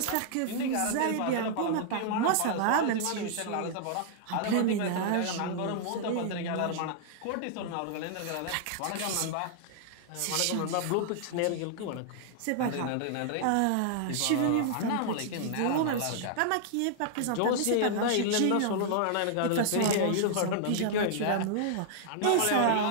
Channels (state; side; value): different; both; correlation -0.01